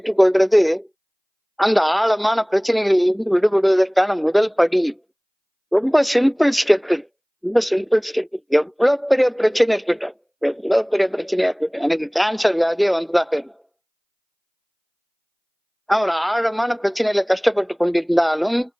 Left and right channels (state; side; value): identical; both; correlation 1.00